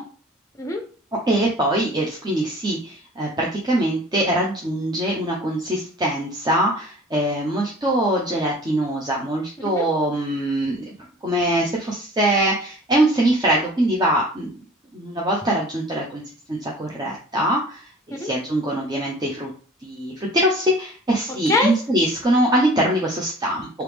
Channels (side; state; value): both; normal; correlation 0.46